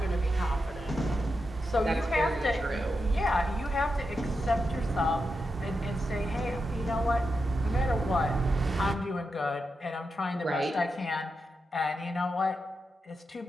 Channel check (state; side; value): normal; both; correlation 0.87